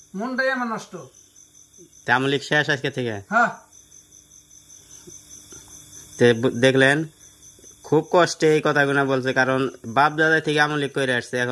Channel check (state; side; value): identical; both; correlation 1.00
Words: মনটাই আমার নষ্ট। আওয়ামী লীগ শেষ আজকে থেকে? হ্যাঁ, দেখলেন খুব কষ্টে এই কথাগুলো বলছে, কারণ বাপ দাদা থেকে আওয়ামী লীগ করে আসছে,